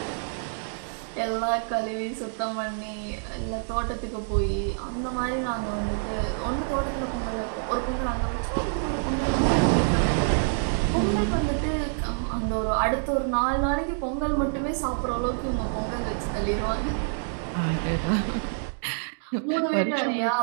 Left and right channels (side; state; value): left; silent; digital silence